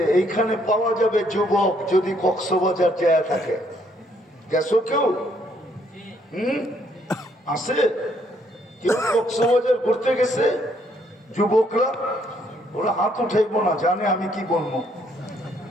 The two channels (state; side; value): normal; both; correlation 0.68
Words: এইখানে পাওয়া যাবে যুবক যদি কক্সবাজার যায় থাকে। গেছো কেউ? আছে কেউ কক্সবাজার ঘুরতে গেছে? যুবকরা ওরা হাত উঠাইবো না, জানে আমি কি বলবো।